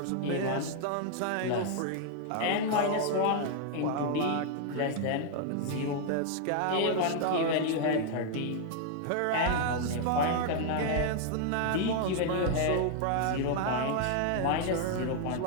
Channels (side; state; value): both; different; correlation 0.00